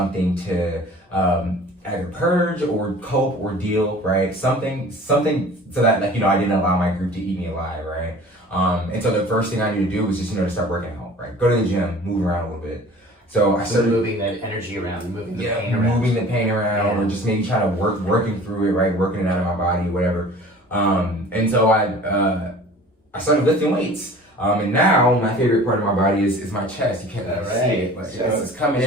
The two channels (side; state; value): both; normal; correlation 0.45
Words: to either purge or cope or deal, right? Something so that I didn't allow my group to eat me alive, right? And so the first thing I needed to do was just to start working out, right? Go to the gym, move around a little bit. So I started moving that energy around, moving the pain around, or just maybe trying to working through it, right? Working it out of my body, whatever. And so I started lifting weights. And now my favorite part of my body is my chest. You can't really see it, but it's coming